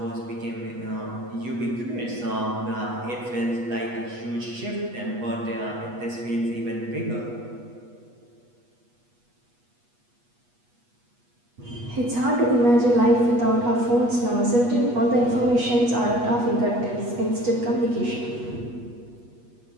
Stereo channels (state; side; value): late; left; 8.2 ms